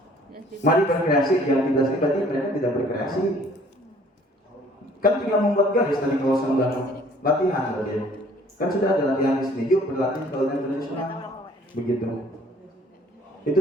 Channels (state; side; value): normal; both; correlation 0.57